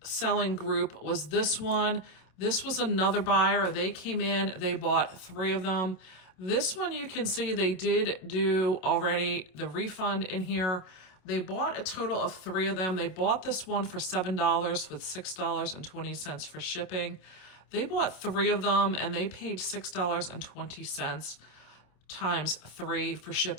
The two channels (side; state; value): right; late; 27 ms